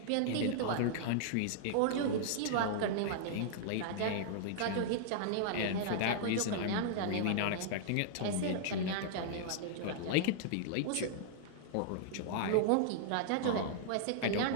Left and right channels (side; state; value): both; different; correlation -0.01